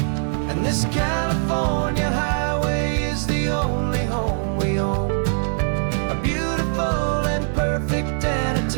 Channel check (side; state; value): left; silent; digital silence